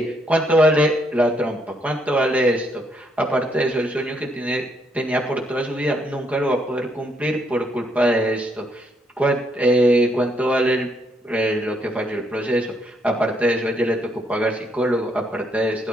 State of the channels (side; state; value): both; normal; correlation 0.73